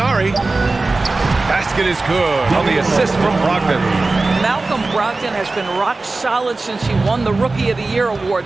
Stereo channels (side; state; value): left; quieter; 3.4 dB